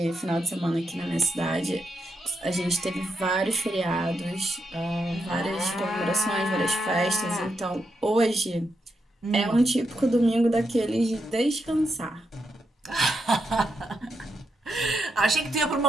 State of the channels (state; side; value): normal; both; correlation 0.83